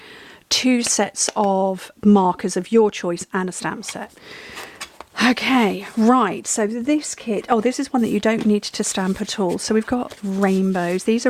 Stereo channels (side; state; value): both; identical; correlation 1.00